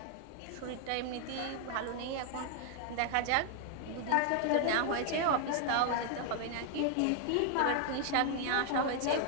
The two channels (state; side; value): different; both; correlation 0.00